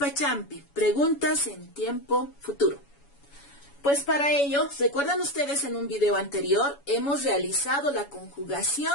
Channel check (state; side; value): late; right; 7.1 ms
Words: preguntas en tiempo futuro. Pues para ello, ¿recuerdan ustedes en un video anterior? Hemos realizado la